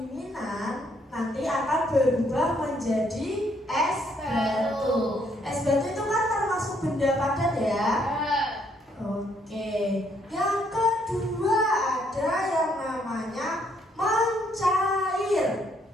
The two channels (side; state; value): both; normal; correlation 0.70